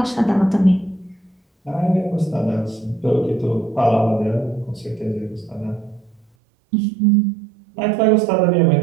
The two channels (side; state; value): left; drops out; at 6.2 s